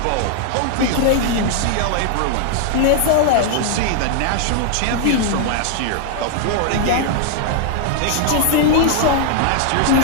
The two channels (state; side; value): different; both; correlation 0.00